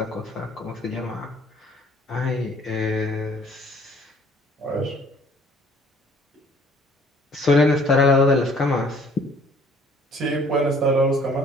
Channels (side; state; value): both; normal; correlation 0.57